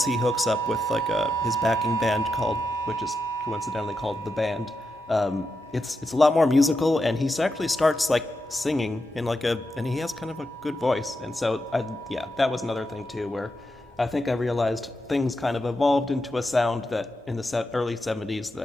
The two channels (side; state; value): both; normal; correlation 0.86